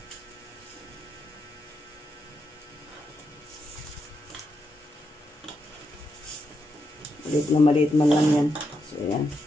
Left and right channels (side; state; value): both; normal; correlation 0.83